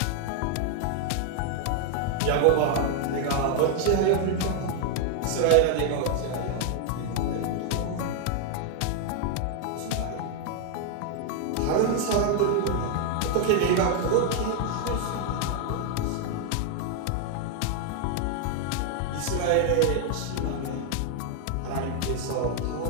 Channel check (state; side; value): different; both; correlation 0.00